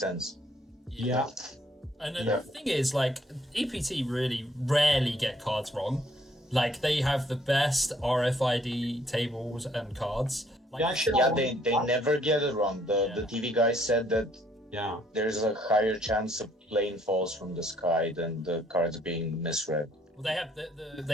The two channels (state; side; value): normal; both; correlation 0.65